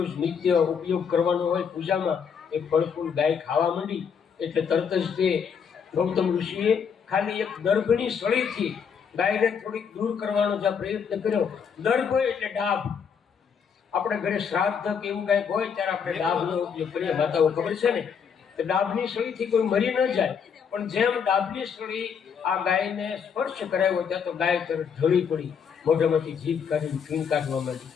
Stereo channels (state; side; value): quieter; right; 6.8 dB